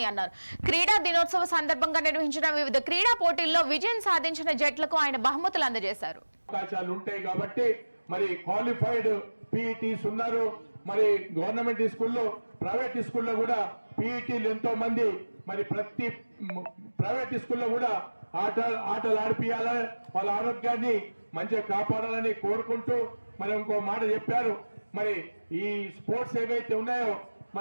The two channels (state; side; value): inverted; both; correlation -1.00